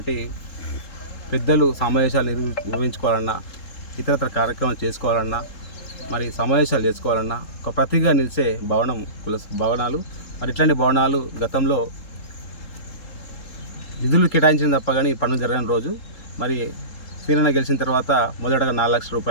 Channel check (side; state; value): right; late; 3.7 ms